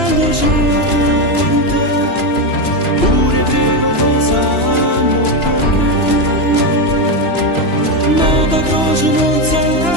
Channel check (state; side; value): late; right; 2.9 ms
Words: gente, pure breve da sanno perché nata cosa non